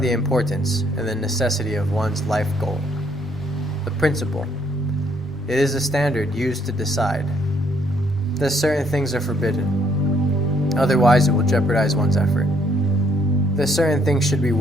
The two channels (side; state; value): both; normal; correlation 0.68